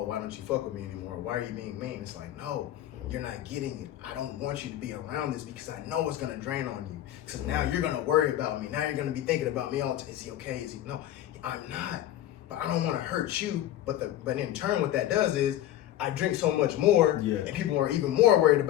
why don't you fuck with me anymore? Why are you being mean? It's like, no, you're not getting it. I don't want you to be around this because I know it's gonna drain on you. Because now you're gonna worry about me. Now you're gonna be thinking about me all the time. Is he okay? Is he? No, I'm not. But I don't want to hurt you. But in turn, what that does is I drink so much more, and people are even more worried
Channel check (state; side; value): quieter; right; 12.8 dB